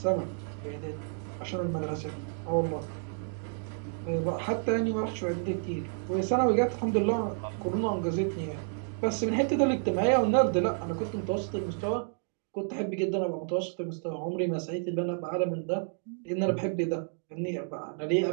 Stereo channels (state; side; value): silent; left; 57 dB below the other